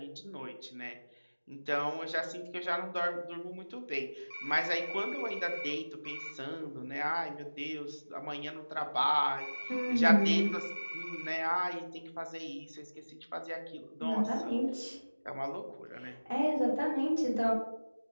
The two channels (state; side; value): inverted; both; correlation -1.00